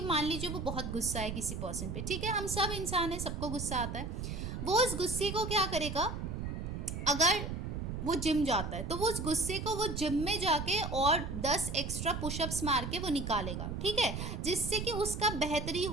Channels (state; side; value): noise; right; rumble, 5 dB below the sound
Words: मान लीजिए वो बहुत गुस्सा है किसी पर्सन पे, ठीक है, हम सब इंसान हैं, सबको गुस्सा आता है। वो उस गुस्से को क्या करेगा, अगर वो जिम जाता है तो वो उस गुस्से को वो जिम में जाके और 10 एक्स्ट्रा पुशअप्स मार के वो निकालेगा, ठीक है, जिससे कि उसका बेहतरी